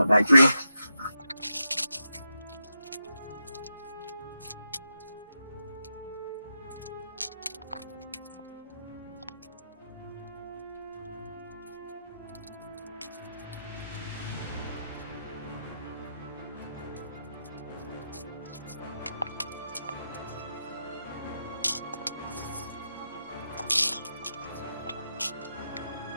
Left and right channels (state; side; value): inverted; both; correlation -0.86